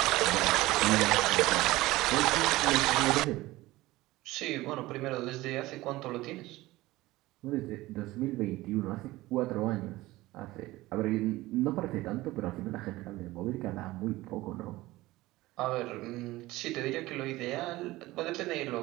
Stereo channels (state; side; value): quieter; left; 18.5 dB